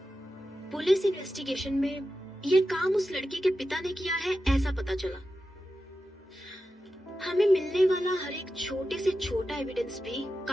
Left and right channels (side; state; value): both; normal; correlation 0.91